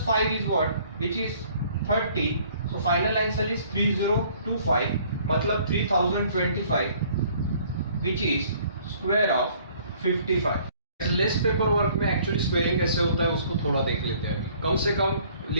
5 is what, which is 30. So final answer is 3025, मतलब 3025, which is square of 55. Less paper work में एक्चुअली स्क्वेयरिंग कैसे होता है उसको थोड़ा देख लेते हैं. अभी कम से कम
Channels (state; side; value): inverted; both; correlation -0.58